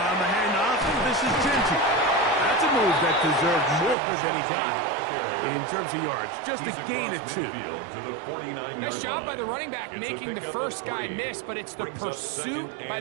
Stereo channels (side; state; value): left; drops out; at 4.0 s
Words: the handoff, this is Genty. That's a move that deserved more than he got in terms of yards. Just a gain of 2. Nice job by the running back making the first guy miss, but it's the pursuit